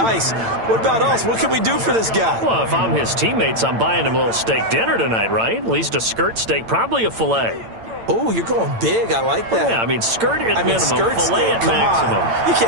What about us? What can we do for this guy? Well, if I'm his teammates, I'm buying him a little steak dinner tonight, right? At least a skirt steak, probably a filet. Oh, you're going big. I like that. Yeah, I mean, skirt at minimum, skirt filet steak, at come maximum. on. You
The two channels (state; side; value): late; left; 8.9 ms